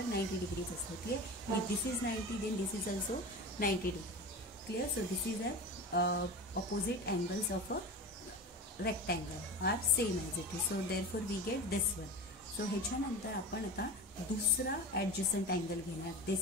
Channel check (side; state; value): both; normal; correlation 0.29